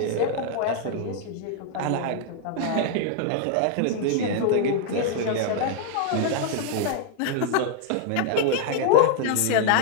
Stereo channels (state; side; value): different; both; correlation -0.01